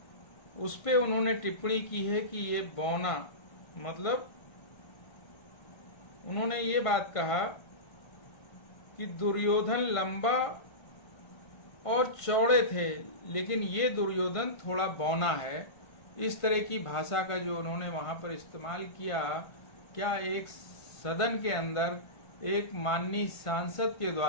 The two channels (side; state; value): right; late; 1.5 ms